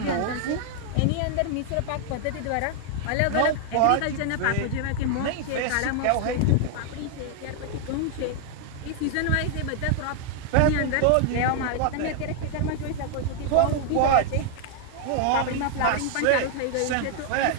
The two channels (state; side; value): different; both; correlation 0.00